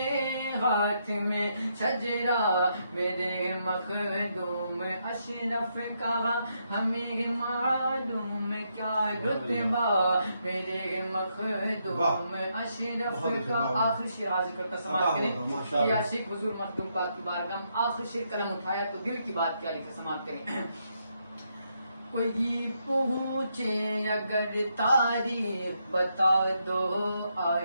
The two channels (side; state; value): both; inverted; correlation -0.78